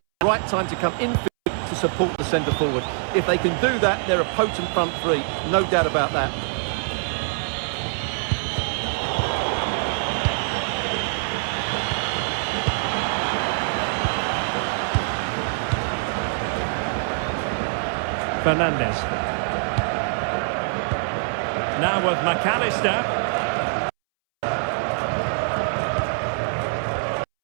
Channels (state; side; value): silent; left; 63 dB below the other